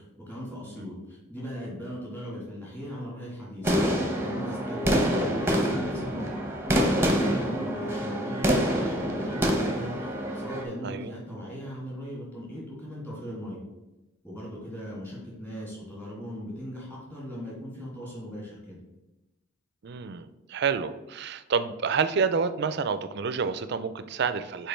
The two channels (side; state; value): both; normal; correlation 0.39